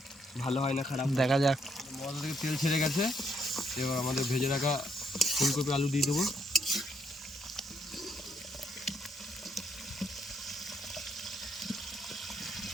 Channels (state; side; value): normal; both; correlation 0.73